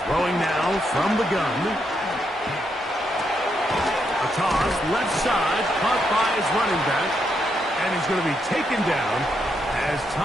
Throwing now from the gun. A toss, left side, caught by his running back. And he's going to be taken down as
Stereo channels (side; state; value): both; normal; correlation 0.79